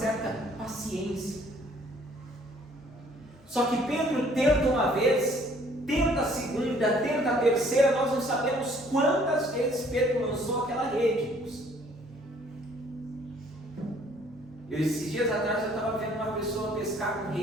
paciência. Só que Pedro tenta uma vez, tenta a segunda, tenta a terceira, nós não sabemos quantas vezes Pedro lançou aquela rede. Esses dias atrás eu estava vendo uma pessoa pescar com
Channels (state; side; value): normal; both; correlation 0.59